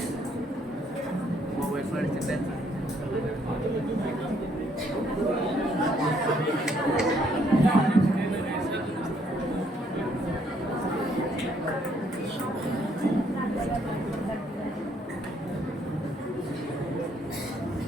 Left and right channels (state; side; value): normal; both; correlation 0.68